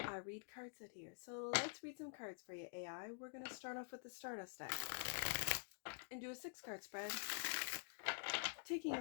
I read cards out here. So let's read some cards for you, AI. We're going to start off with the Stardust deck and do a 6-card spread. Taking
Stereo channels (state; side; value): silent; right; digital silence